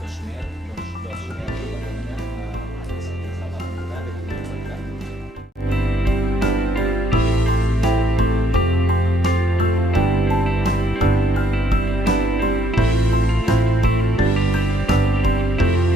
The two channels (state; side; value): normal; both; correlation 0.69